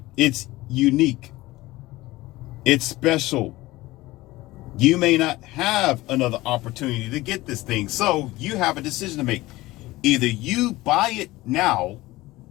it's unique. It's special. You may not have another opportunity to get this thing. So you have a decision to make. Either you buy it now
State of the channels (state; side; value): quieter; right; 18.8 dB